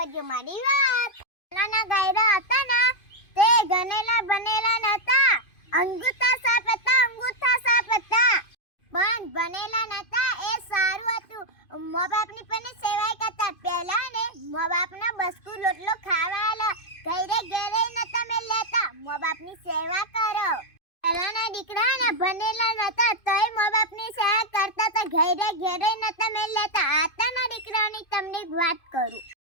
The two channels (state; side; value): late; right; 2.5 ms